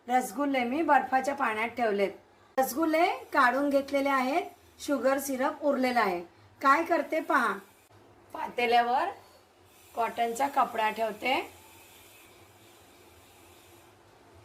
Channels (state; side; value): identical; both; correlation 1.00